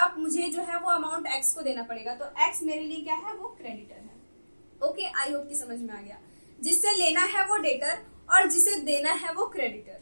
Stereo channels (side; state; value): both; inverted; correlation -1.00